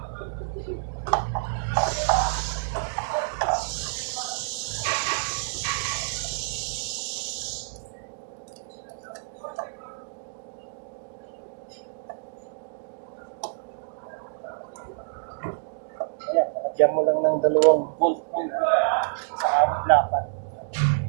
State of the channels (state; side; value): silent; left; digital silence